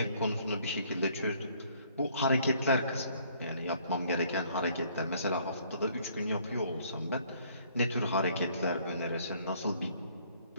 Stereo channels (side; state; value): both; inverted; correlation -0.62